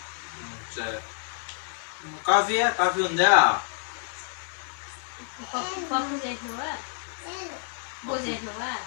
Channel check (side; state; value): right; silent; 59 dB below the other